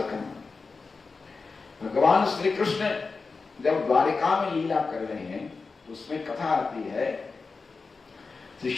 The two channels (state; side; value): quieter; right; 4.4 dB